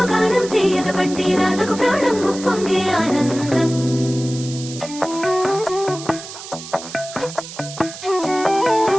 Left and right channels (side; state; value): right; noise; hiss, 12 dB below the sound